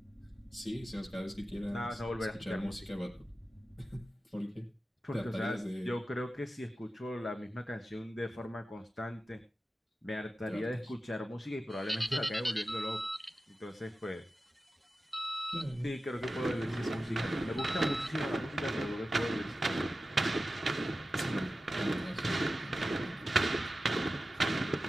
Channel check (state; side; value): normal; both; correlation 0.94